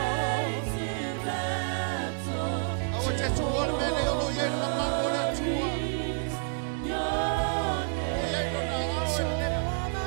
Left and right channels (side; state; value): left; silent; digital silence